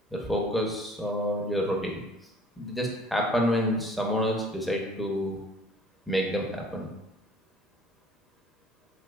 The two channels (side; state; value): both; normal; correlation 0.52